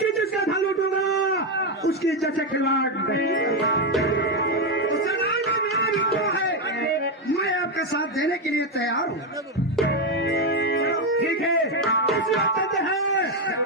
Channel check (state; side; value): normal; both; correlation 0.07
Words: जिसका धन लूटूंगा उसकी इज्जत से खिलवाड़ नहीं करूंगा। तो जनाब मेरा भी तो है, मैं आपका साथ देने के लिए तैयार हूँ। ठीक है, इसी बात करते हैं